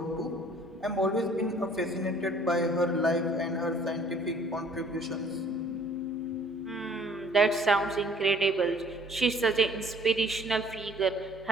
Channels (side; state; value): both; normal; correlation 0.56